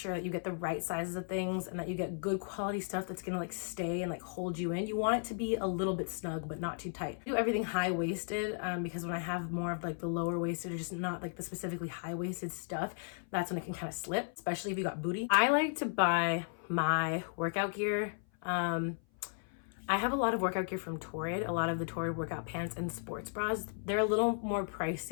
that you get the right sizes of things and that you get good quality stuff that's gonna like stay and like hold you in. You want it to be a little bit snug, but not too tight. I do everything high-waisted because when I have more of like the lower waisted or just not like the specifically high-waisted stuff, that's when it can kind of slip, especially if you got booty. I like to buy my workout gear. I have a lot of workout gear from Torrid, a lot of the Torrid workout pants and sports bras. They're a little more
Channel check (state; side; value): silent; right; 54 dB below the other